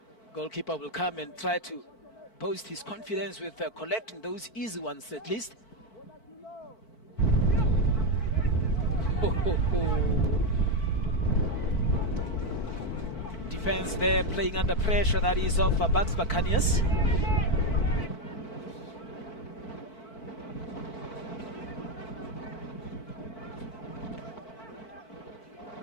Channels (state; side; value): late; right; 4.5 ms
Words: Goalkeeper will come and try to boost his confidence with collecting those easy ones at least. Defense there playing under pressure, that is of Bucks Buccaneers.